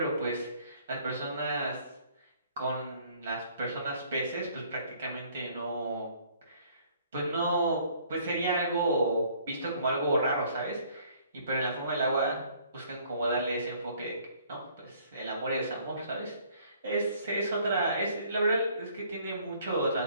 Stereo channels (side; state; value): both; inverted; correlation -0.60